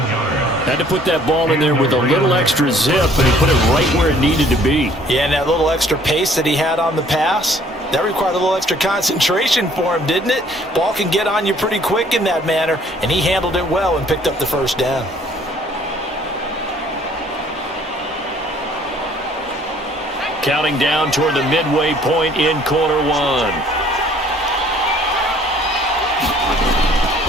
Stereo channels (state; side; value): normal; both; correlation 0.58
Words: Had to put that ball in there with a little extra zip, and he put it right where it needed to be. Yeah, and that little extra pace that he had on the pass, that required a little extra concentration for him, didn't it? Ball can get on you pretty quick in that manner, and he handled it well and picked up the first down. Counting down toward the midway point in quarter 1.